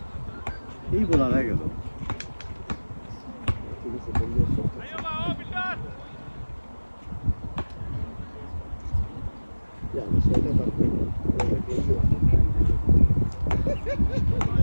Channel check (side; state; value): both; inverted; correlation -1.00